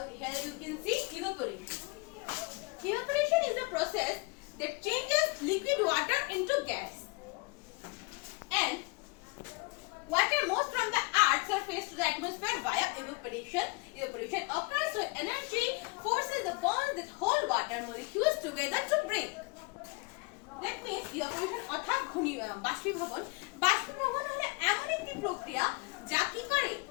here you can see evaporation. Evaporation is a process that changes liquid water into gas, and water moves from the earth's surface to the atmosphere via evaporation. Evaporation occurs when energy forces the bonds that hold water molecules together to break. That means evaporation অর্থাৎ বাষ্পীভবন। বাষ্পীভবন হলো এমন একটি প্রক্রিয়া যা কি করে,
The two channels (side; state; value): right; quieter; 28.4 dB